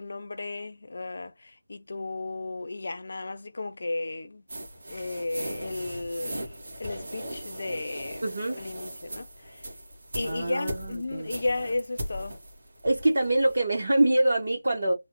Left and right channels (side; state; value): both; inverted; correlation -0.96